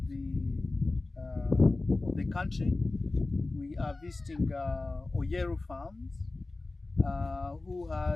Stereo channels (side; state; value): right; quieter; 3.2 dB